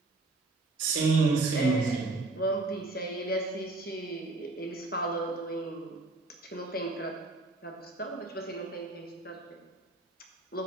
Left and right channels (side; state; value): left; quieter; 3.2 dB